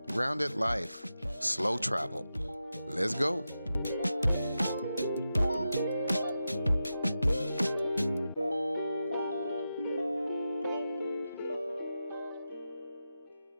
Grounded Life, Slow Travel. Let's go.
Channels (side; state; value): both; inverted; correlation -0.90